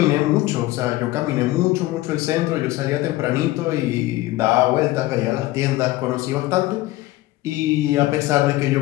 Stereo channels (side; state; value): right; quieter; 17.3 dB